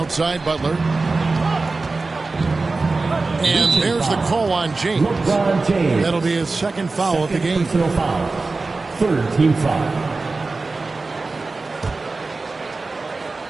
Butler. And there's the call on James. That'll be his second foul of the game. Personal foul. 3rd team foul.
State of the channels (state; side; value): quieter; left; 3.7 dB